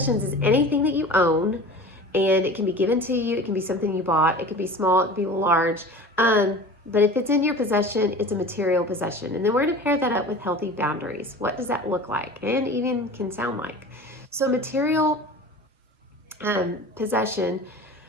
is anything that you own and it can be given to you. It can be something you bought. It can be small. It can be large. But if it's in your possession, it's a material possession. And then we're going to pair that up with healthy boundaries. What does that look like and even can sound like? So material possession,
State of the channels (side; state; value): both; normal; correlation 0.38